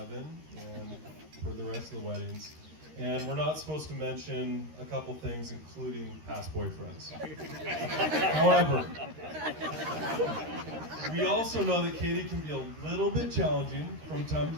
and for the rest of the weddings. And we're not supposed to mention a couple things, including past boyfriends. However, we also know that Katie can be a little bit challenging from time to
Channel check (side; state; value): left; late; 13 ms